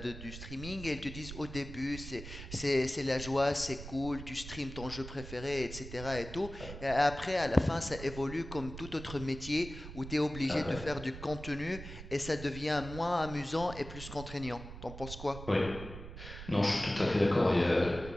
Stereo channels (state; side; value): noise; right; rumble, 11 dB below the sound